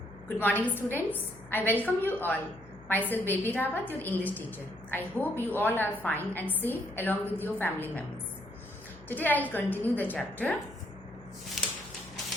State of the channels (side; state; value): left; noise; hum, 21 dB below the sound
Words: Good morning, students. I welcome you all. Myself Baby Rawat, your English teacher. I hope you all are fine and safe along with your family members. Today I will continue the chapter